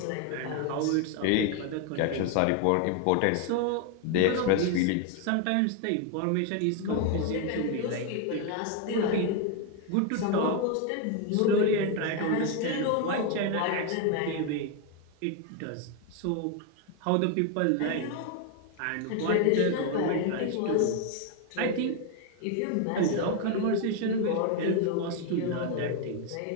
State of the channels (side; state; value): both; different; correlation 0.01